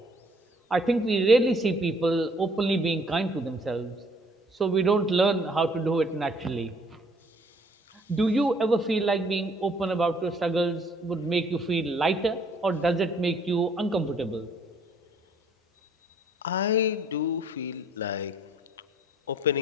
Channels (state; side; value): normal; both; correlation 0.61